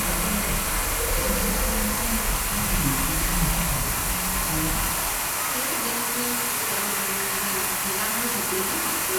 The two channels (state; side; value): identical; both; correlation 1.00